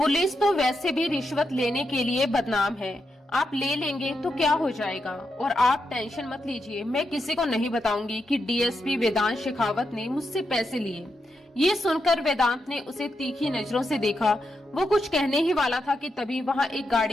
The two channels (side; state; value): both; normal; correlation 0.85